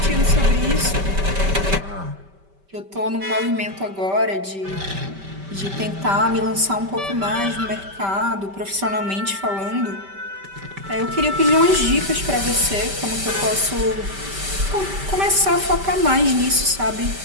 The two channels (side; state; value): left; late; 5.1 ms